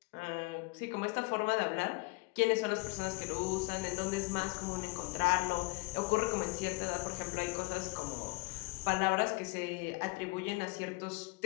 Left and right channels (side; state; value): right; quieter; 27.6 dB